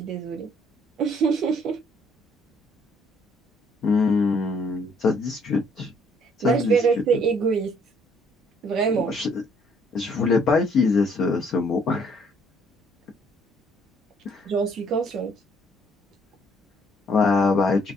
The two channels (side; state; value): both; normal; correlation 0.64